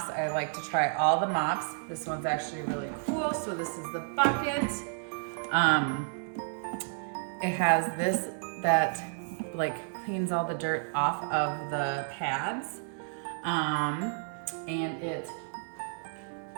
I like to try all the mops. This one's actually really cool. So this is the bucket. It has this that like cleans all the dirt off of the pads. And it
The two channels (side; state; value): left; silent; 57 dB below the other